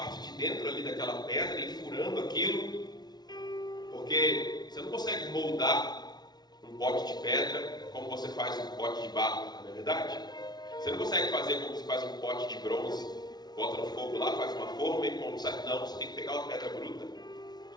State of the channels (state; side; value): late; right; 0.19 ms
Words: de dentro ali daquela pedra e furando aquilo, porque você não consegue moldar um pote de pedra como você faz um pote de barro, não é verdade? Você não consegue fazer como você faz um pote de bronze, bota no fogo lá, faz uma forma e como sai. Não, você tem que pegar uma pedra bruta